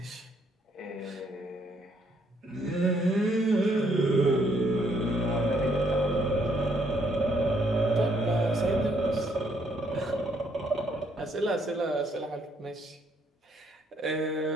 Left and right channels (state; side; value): normal; both; correlation 0.70